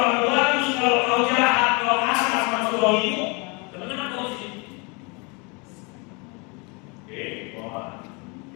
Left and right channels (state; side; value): quieter; right; 30.7 dB